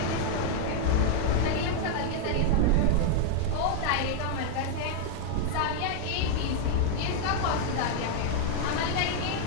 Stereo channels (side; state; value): both; different; correlation 0.00